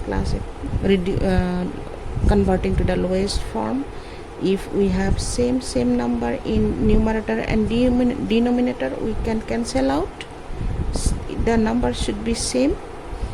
class, converting to the lowest form. If we have same number in numerator and denominator, we can cancel out. The number should be same.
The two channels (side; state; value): both; identical; correlation 1.00